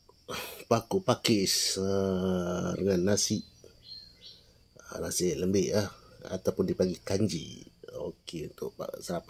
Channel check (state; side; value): identical; both; correlation 1.00